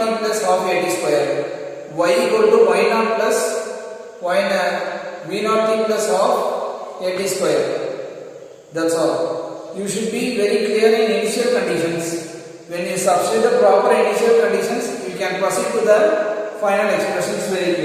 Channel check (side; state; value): both; identical; correlation 1.00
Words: plus half a t square, y equal to y naught plus v naught t plus half a t square. That's all. You should be very clear in initial conditions. When you substitute the proper initial conditions, you can proceed to the final expressions very